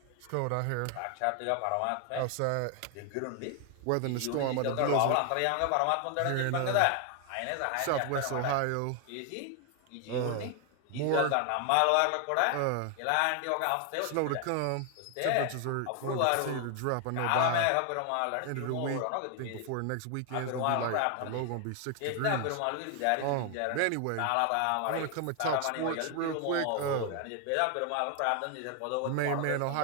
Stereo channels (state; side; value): different; both; correlation 0.00